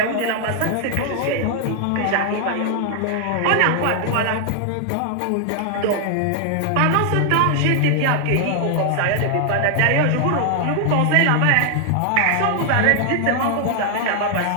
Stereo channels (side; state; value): both; different; correlation 0.00